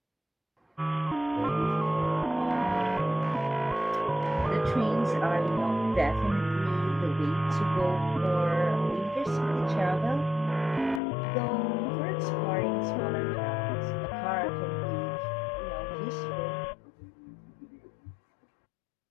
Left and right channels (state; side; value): drops out; right; at 11.0 s